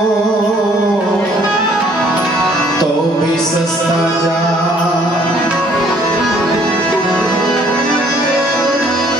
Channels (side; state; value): both; normal; correlation 0.61